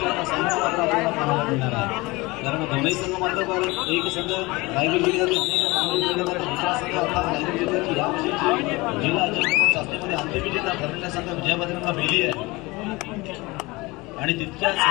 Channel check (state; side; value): quieter; right; 22.9 dB